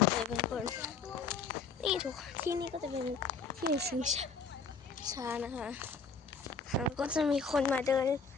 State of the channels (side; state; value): right; quieter; 5.0 dB